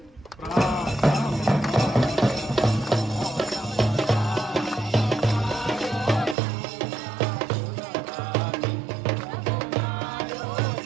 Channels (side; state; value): left; drops out; at 6.4 s